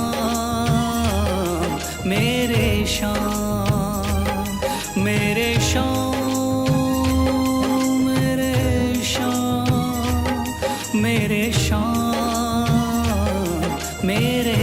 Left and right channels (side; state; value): right; noise; hum, 26 dB below the sound